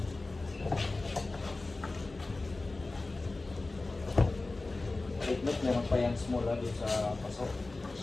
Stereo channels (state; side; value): quieter; right; 3.3 dB